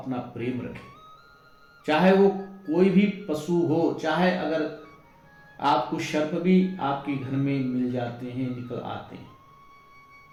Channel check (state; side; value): identical; both; correlation 1.00